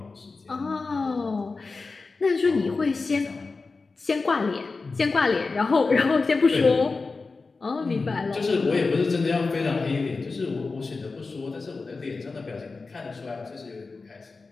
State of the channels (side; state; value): right; quieter; 4.0 dB